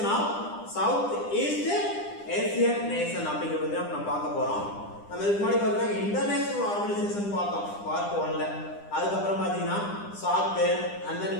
of South East Asian Nation அப்படிங்கிறது நம்ம பார்க்க போறோம். நம்ம இதுக்கு முன்னாடி பார்த்தீங்கன்னா இன்டர்நேஷனல் ஆர்கனைசேஷன் பார்த்தோம் பார்ட் 1ல. அதுக்கப்புறம் பார்த்தீங்கன்னா SAARC and then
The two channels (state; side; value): late; right; 9.9 ms